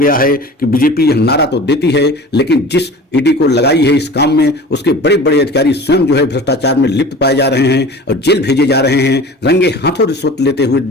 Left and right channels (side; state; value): both; normal; correlation 0.39